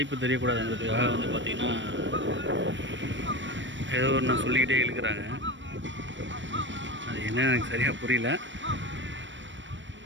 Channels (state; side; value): late; left; 0.54 ms